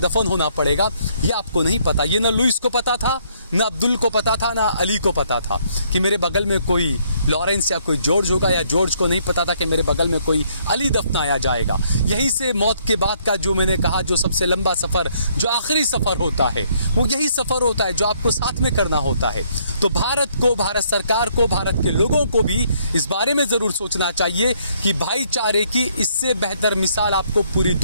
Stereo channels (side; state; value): both; inverted; correlation -0.68